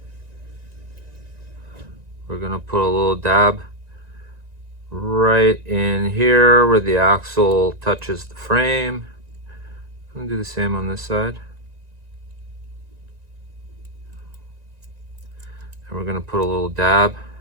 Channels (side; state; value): left; late; 1.9 ms